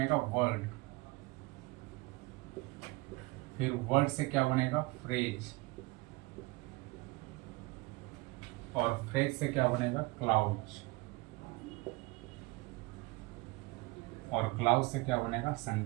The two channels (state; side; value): quieter; left; 23.0 dB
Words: वर्ड। फिर वर्ड से क्या बनेगा? फ्रेज। और फ्रेज से क्या बनेगा? क्लाउज। और क्लाउज से क्या बनेगा?